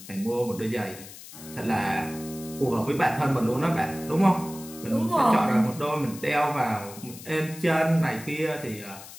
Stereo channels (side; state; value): left; noise; hiss, 16 dB below the sound